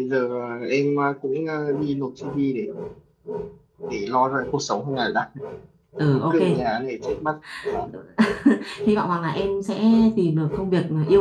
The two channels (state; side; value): identical; both; correlation 1.00